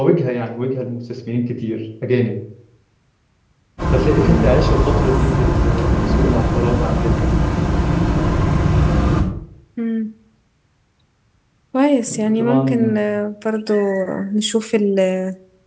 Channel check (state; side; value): identical; both; correlation 1.00